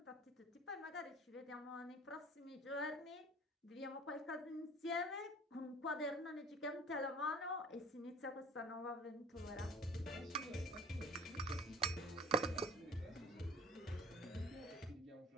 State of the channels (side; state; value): both; normal; correlation 0.47